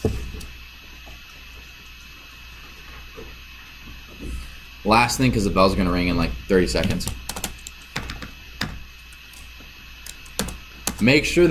Last thing, because the bell's gonna ring in like 30 seconds. Make sure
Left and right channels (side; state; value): both; identical; correlation 1.00